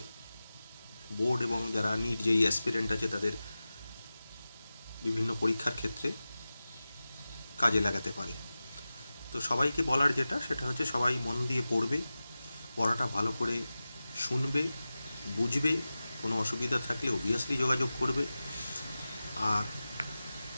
বোর্ড এবং যারা নিট যেই অ্যাসপিরেন্ট আছে তাদের বিভিন্ন পরীক্ষার ক্ষেত্রে কাজে লাগাতে পারে। তো সবাইকে বলার যেটা সেটা হচ্ছে সবাই মন দিয়ে পড়বে, পড়াটা ভালো করে শুনবে, বুঝবে, কোনো অসুবিধা থাকলে অবভিয়াসলি যোগাযোগ করবে। আর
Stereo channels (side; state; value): both; inverted; correlation -0.95